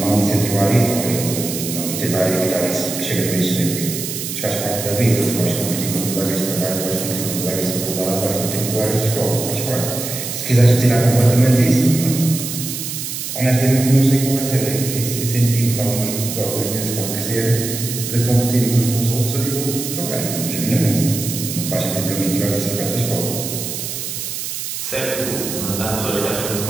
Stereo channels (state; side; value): noise; right; hiss, 5 dB below the sound